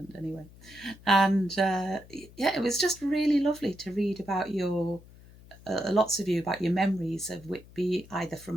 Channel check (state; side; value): noise; left; hum, 22 dB below the sound